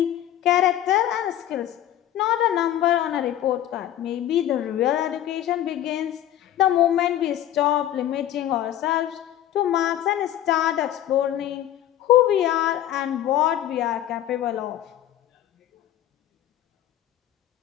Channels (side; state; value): right; quieter; 12.1 dB